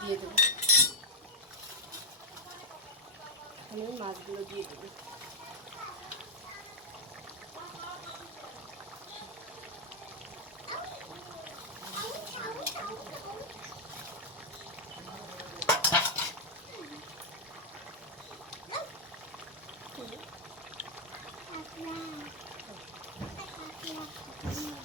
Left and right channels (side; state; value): both; normal; correlation 0.00